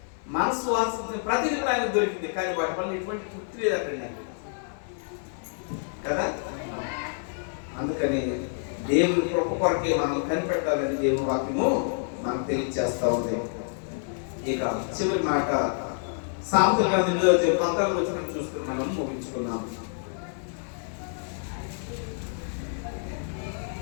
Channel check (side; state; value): right; silent; 60 dB below the other